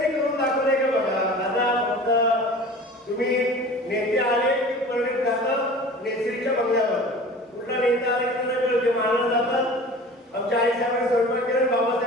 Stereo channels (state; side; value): normal; both; correlation 0.41